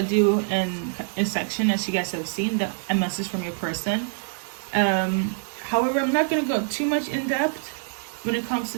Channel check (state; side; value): silent; left; digital silence